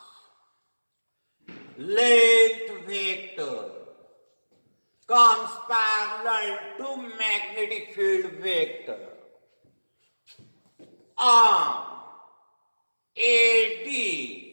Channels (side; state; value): both; inverted; correlation -1.00